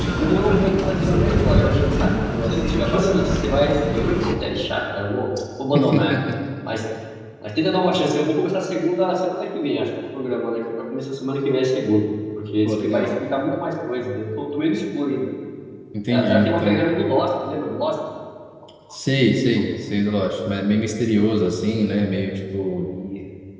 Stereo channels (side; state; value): both; identical; correlation 1.00